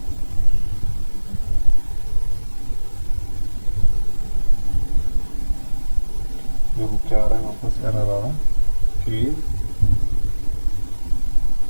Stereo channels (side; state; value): both; inverted; correlation -1.00